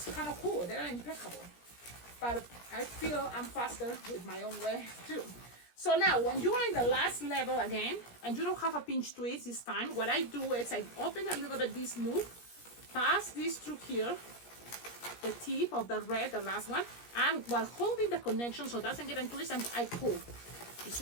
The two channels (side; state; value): right; late; 17 ms